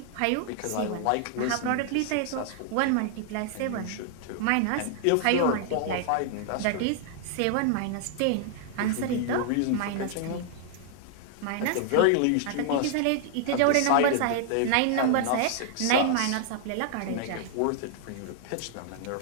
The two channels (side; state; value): both; different; correlation 0.00